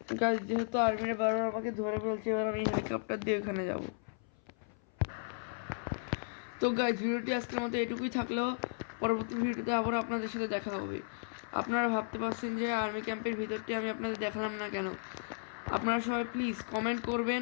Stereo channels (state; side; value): silent; right; 55 dB below the other